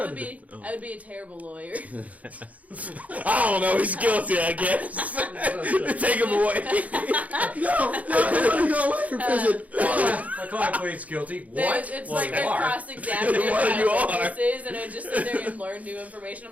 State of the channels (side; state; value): left; late; 0.071 ms